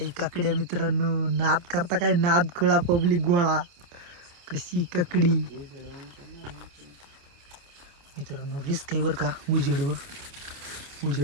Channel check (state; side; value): late; left; 28 ms